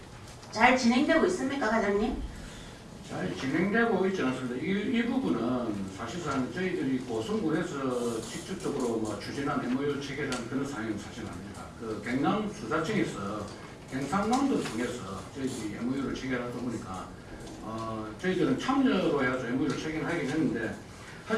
진행되고 있습니까, 과장님? 잘 진행되고 있지 않습니다. 이 부분은 사실상 저희들이 고성군에서 직접적으로 뭐 추진한 MOU 체결한 그런 사항은 사실 아닙니다. 그 경남 수사청에서 경상남도 통해서 저희들이 MOU를 체결하다 보니까 저희들은 참여로 해서 MOU를 체결하긴 했는데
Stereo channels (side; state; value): both; identical; correlation 1.00